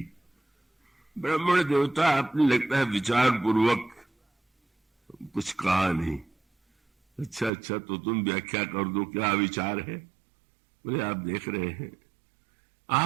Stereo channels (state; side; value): drops out; left; at 7.5 s